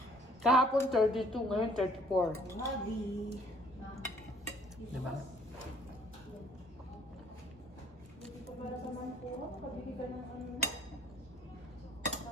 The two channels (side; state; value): both; normal; correlation 0.58